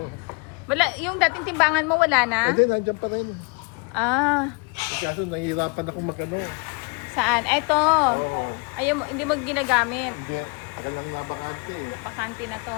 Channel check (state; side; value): quieter; right; 32.1 dB